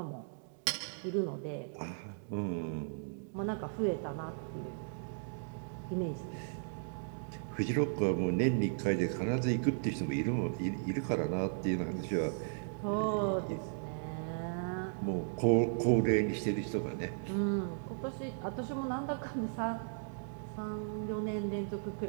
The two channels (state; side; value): silent; left; digital silence